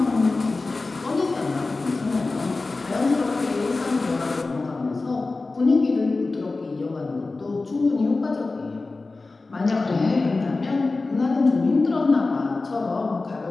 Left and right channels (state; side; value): quieter; right; 3.6 dB